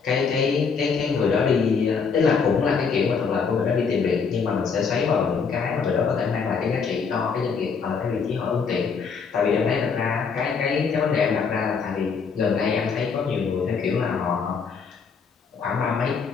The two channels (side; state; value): right; quieter; 5.6 dB